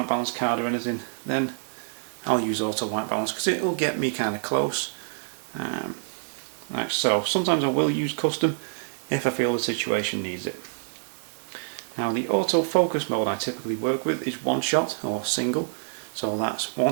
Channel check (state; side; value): silent; left; digital silence